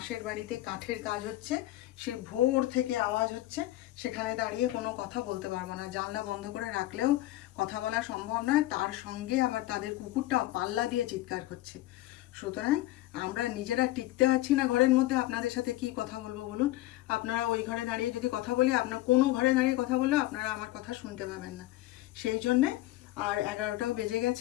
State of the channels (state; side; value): quieter; right; 16.4 dB